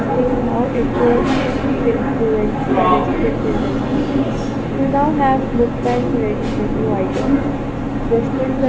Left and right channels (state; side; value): identical; both; correlation 1.00